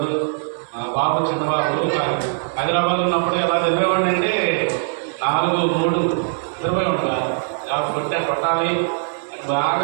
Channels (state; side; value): silent; left; 65 dB below the other